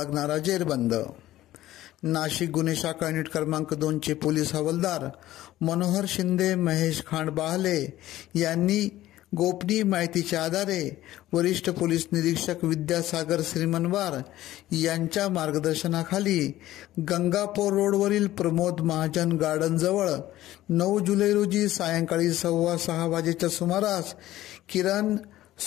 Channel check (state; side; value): quieter; right; 14.9 dB